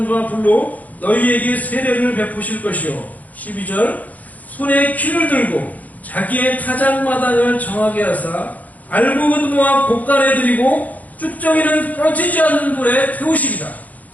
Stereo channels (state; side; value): late; right; 0.077 ms